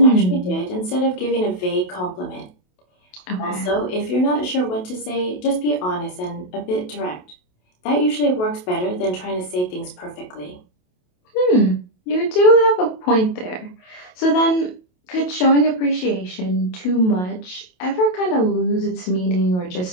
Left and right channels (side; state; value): right; late; 28 ms